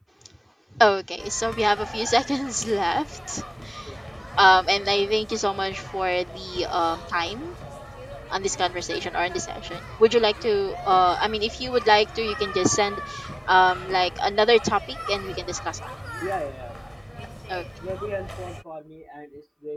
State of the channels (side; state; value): both; identical; correlation 1.00